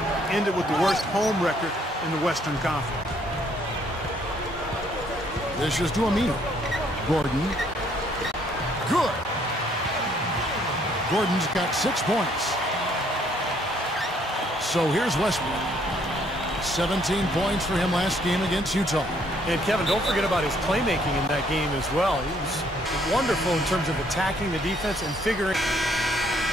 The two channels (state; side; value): normal; both; correlation 0.66